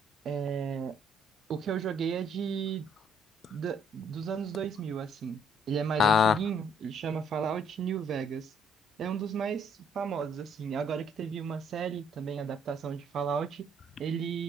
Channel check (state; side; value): normal; both; correlation 0.65